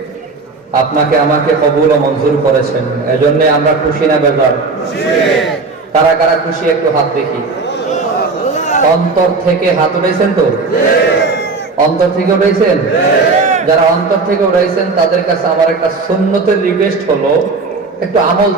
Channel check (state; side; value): quieter; left; 4.0 dB